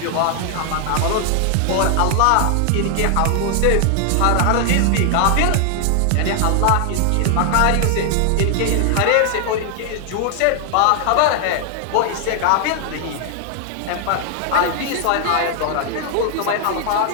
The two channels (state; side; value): different; both; correlation 0.00